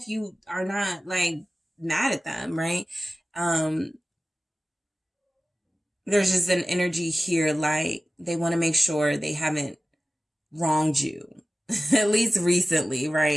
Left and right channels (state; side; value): normal; both; correlation 0.96